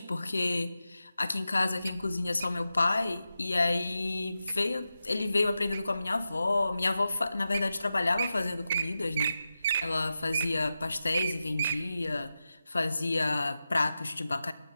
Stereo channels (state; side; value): inverted; both; correlation -0.91